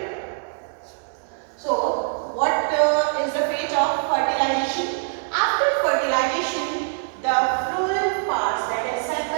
So what is the fate of fertilization? After fertilization, the floral parts, that is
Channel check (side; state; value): left; silent; digital silence